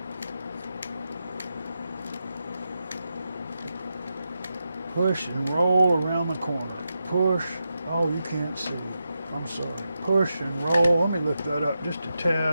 Push and roll around the corner. Push. Oh, you can't see. I'm sorry. Push and roll. Let me lift that up just a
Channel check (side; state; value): both; inverted; correlation -0.88